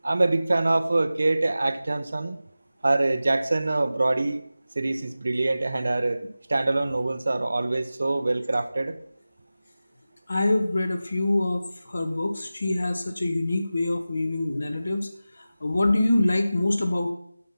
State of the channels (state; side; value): inverted; both; correlation -0.95